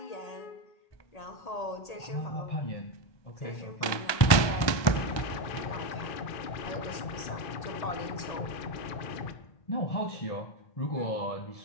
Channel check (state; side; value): late; right; 1.2 ms